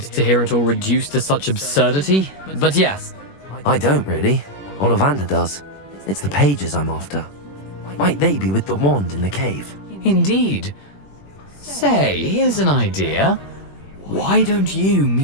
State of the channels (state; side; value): late; right; 21 ms